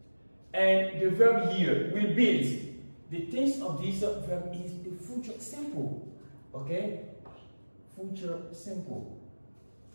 And the verb here will build. The tense of this verb is the future simple. Okay? Future simple.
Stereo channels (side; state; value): both; inverted; correlation -1.00